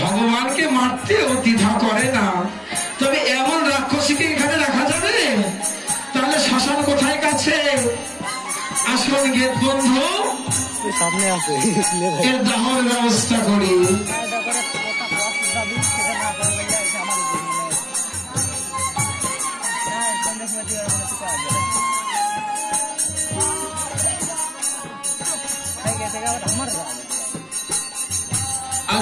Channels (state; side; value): identical; both; correlation 1.00